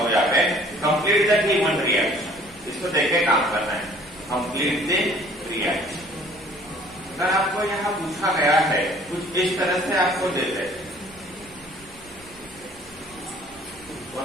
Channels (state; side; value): noise; right; rumble, 24 dB below the sound